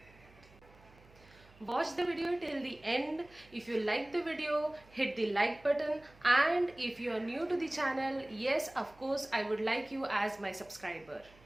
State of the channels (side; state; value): right; noise; hum, 26 dB below the sound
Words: Watch the video till the end. If you like the video, hit the like button, and if you are new to the channel, yes, of course, I would like you as my subscriber.